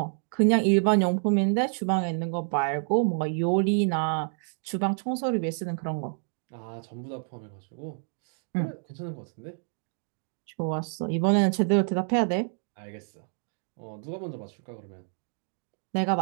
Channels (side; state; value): left; silent; 59 dB below the other